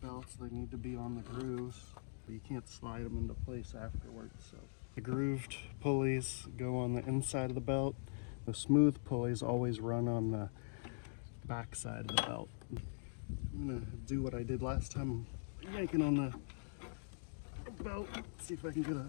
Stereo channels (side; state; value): right; silent; digital silence